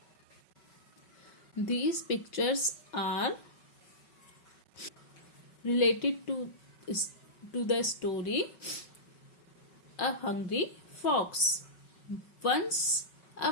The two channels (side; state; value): right; late; 5.4 ms